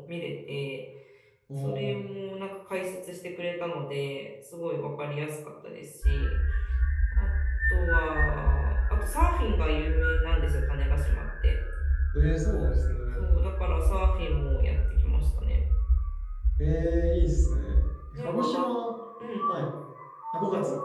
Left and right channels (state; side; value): identical; both; correlation 1.00